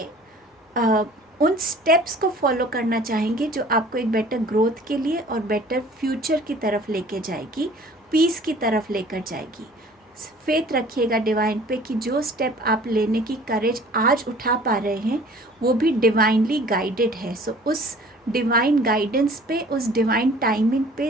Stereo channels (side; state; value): both; normal; correlation 0.50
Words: उन स्टेप्स को फॉलो करना चाहेंगे जो आपको एक बेटर ग्रोथ के लिए और बेटर फ्यूचर की तरफ लेके जाएगी, पीस की तरफ लेकर जाएगी। फेथ रखिएगा डिवाइन पे कि जो स्टेप आप लेने की करेज आज उठा पा रहे हैं वो भी डिवाइनली गाइडेड है। सो उस डिवाइन गाइडेंस पे, उस डिवाइन टाइमिंग पे